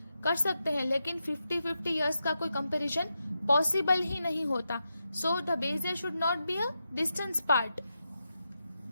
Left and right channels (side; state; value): both; inverted; correlation -0.87